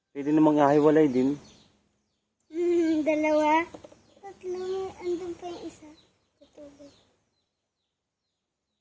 Pwede namang ahiwalay din. 2, 3, andun pa yung isa. Tutubig.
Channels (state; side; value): identical; both; correlation 1.00